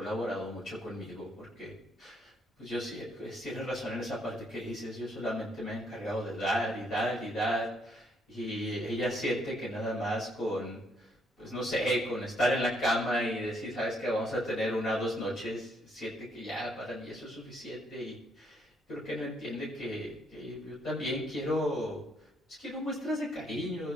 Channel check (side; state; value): both; normal; correlation 0.71